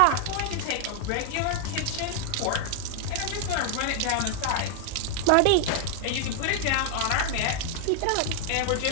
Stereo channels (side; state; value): both; different; correlation 0.00